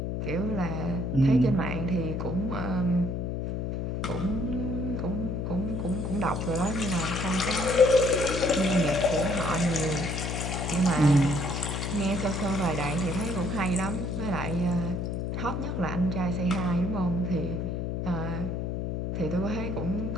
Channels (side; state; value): left; noise; hum, 2 dB below the sound